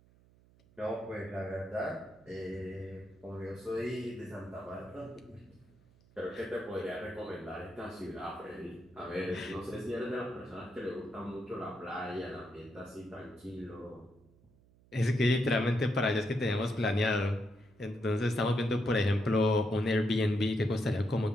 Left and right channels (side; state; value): right; noise; hum, 29 dB below the sound